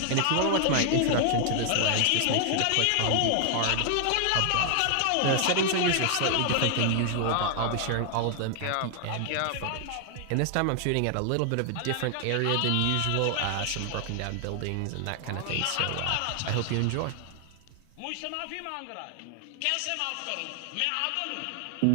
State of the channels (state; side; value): different; both; correlation 0.00